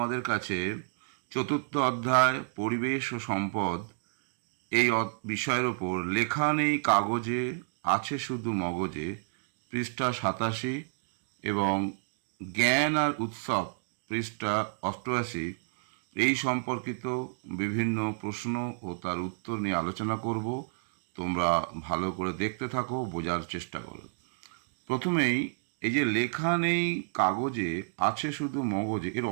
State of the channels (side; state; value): left; silent; digital silence